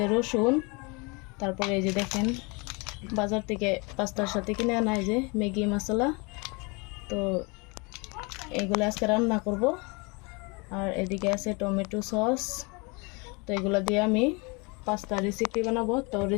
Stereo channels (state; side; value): quieter; right; 29.3 dB